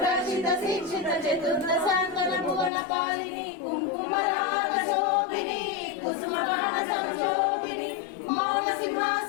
शिक्षित चतुर्दशांतन भुवन पालिनी कुंकुमराग शोभिनी कुसुमगान संशोभिनी मौन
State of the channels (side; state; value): right; drops out; at 2.7 s